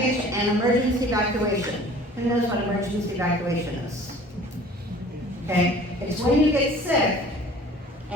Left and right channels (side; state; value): both; normal; correlation 0.48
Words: and emergency evacuation. Who knows what emergency evacuation is? Okay, it's when you get sick,